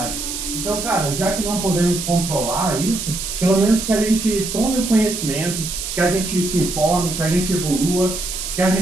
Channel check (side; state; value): right; noise; hiss, 5 dB below the sound